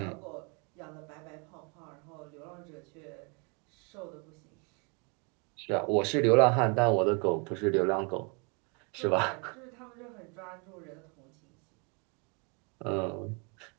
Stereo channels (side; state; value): left; quieter; 33.8 dB